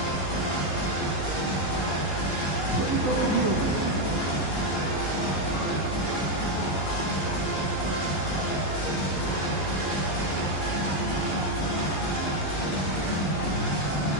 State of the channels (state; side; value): late; right; 15 ms